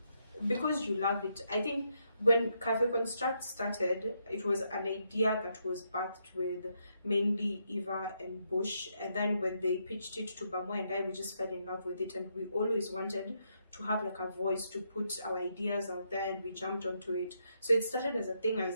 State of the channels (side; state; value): both; inverted; correlation -0.78